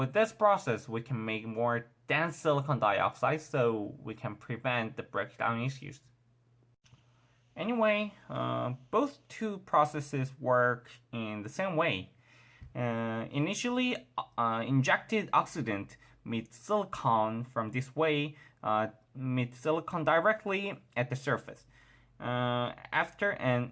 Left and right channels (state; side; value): identical; both; correlation 1.00